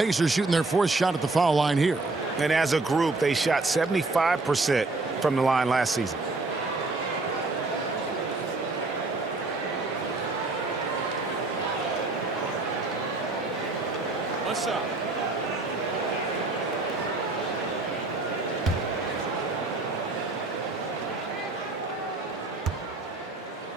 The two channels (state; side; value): quieter; left; 3.3 dB